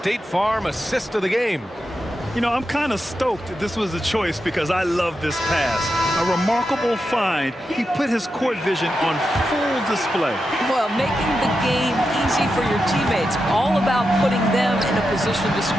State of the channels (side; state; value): both; normal; correlation 0.88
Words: Farm assist of the game. You know, I'm kind of stoked this was a choice because I love this pass. A remarkable find. He put his court vision on full display. Well, making the game easy for your teammates. All about putting them in a position to